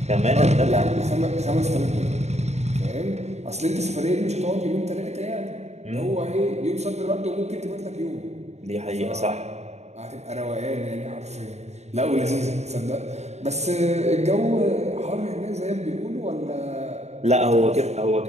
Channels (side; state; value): left; late; 0.32 ms